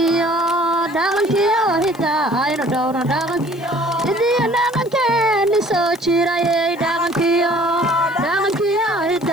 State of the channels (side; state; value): left; noise; hiss, 25 dB below the sound